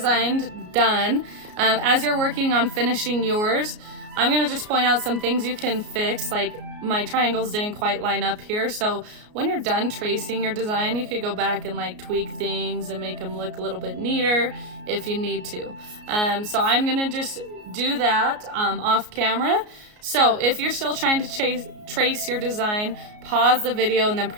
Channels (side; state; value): left; late; 33 ms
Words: done. As you're working on finishing yours, I'm gonna just point out some things you can fix, like my triangles didn't quite line up here. So when you're done tracing your design, you could go back and like tweak things and make them look a little bit neater if you need to. So I'm gonna just do that off camera. So if you're still trying to trace your design, pause the video and then